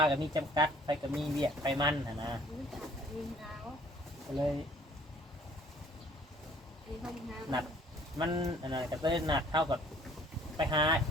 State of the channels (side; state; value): both; normal; correlation 0.56